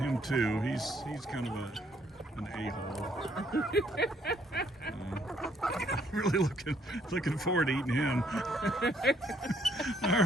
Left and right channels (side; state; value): both; normal; correlation 0.68